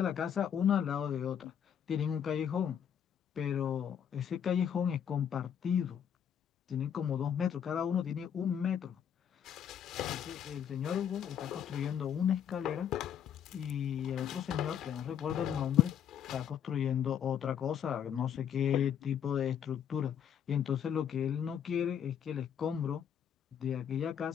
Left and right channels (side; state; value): right; quieter; 8.7 dB